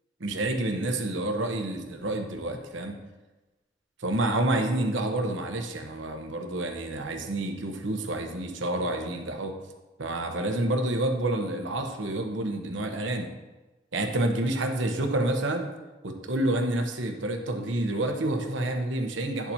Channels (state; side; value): normal; both; correlation 0.43